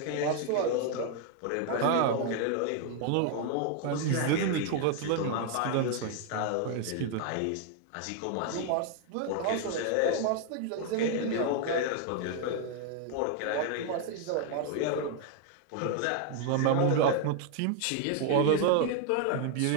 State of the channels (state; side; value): different; both; correlation 0.00